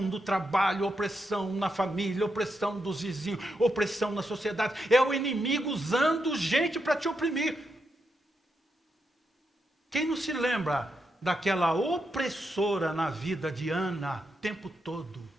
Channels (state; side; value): normal; both; correlation 0.84